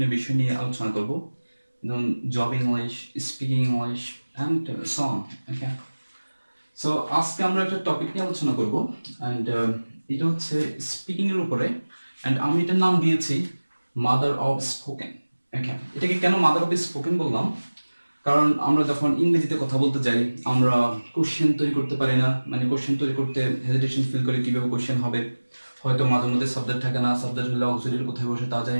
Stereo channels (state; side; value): inverted; both; correlation -1.00